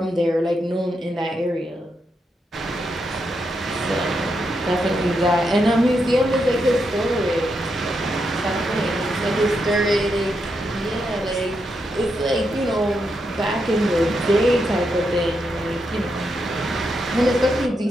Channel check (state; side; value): normal; both; correlation 0.82